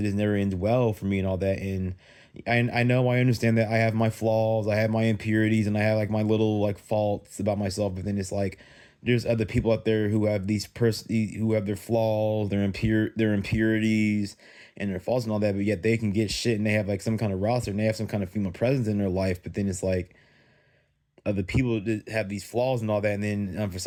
just never ends well for me and all that. And I know, I understand that I have my flaws, I have my impurities, and I have like my little like faults about myself. But then it's like there's other people out there who have who have their flaws, their impurities and their faults and all that, but yet they can get shit and they have like some kind of roster and they have some kind of female presence in their life. But then it's like other people that have these flaws and all that, and then for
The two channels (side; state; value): both; identical; correlation 1.00